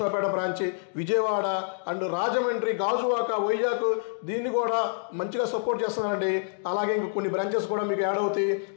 బ్రాంచ్, విజయవాడ అండ్ రాజమండ్రి, గాజువాక, వైజాగ్ దీన్ని కూడా మంచిగా సపోర్ట్ చేస్తున్నానండి. అలాగే ఇంక కొన్ని బ్రాంచెస్ కూడా మీకు యాడ్ అవుతాయి.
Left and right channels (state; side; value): silent; right; digital silence